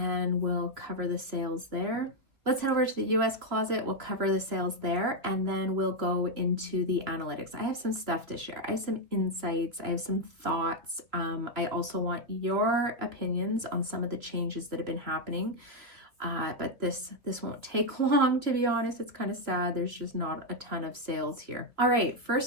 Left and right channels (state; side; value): late; left; 2.7 ms